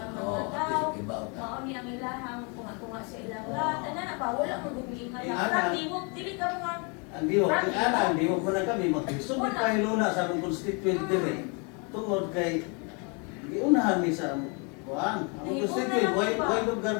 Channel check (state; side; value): quieter; right; 33.9 dB